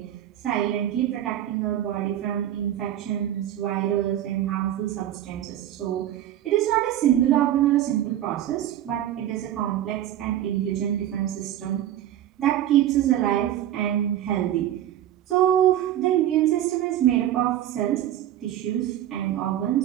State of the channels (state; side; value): quieter; left; 11.9 dB